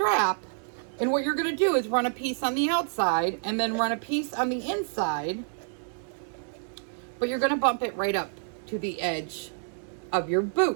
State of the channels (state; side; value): silent; left; digital silence